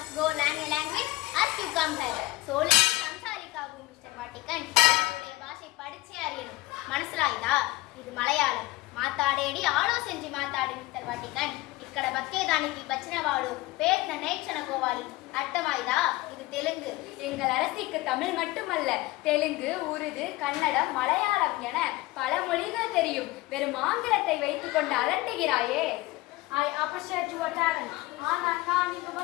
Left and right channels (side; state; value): right; quieter; 19.5 dB